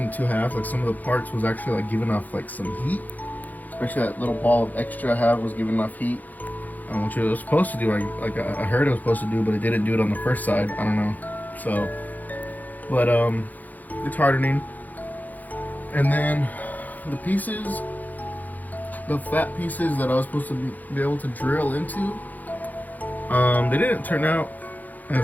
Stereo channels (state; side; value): late; right; 0.082 ms